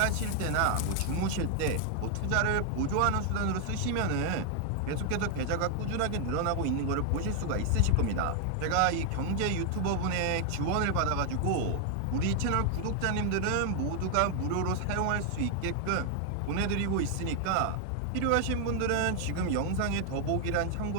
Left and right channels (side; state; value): both; different; correlation 0.00